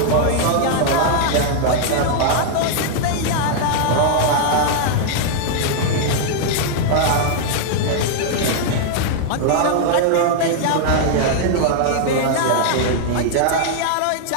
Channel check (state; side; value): different; both; correlation -0.01